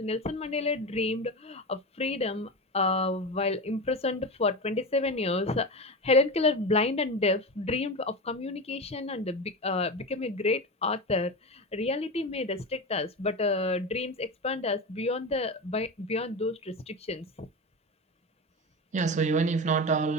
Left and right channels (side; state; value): both; normal; correlation 0.22